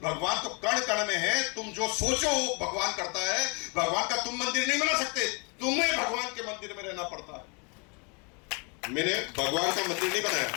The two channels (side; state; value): right; quieter; 33.3 dB